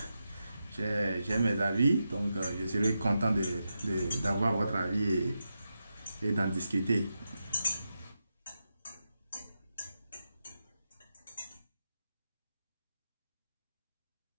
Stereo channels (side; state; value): both; inverted; correlation -0.88